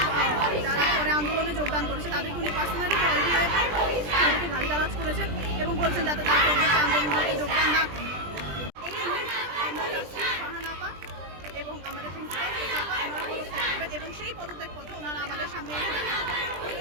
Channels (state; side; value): late; left; 20 ms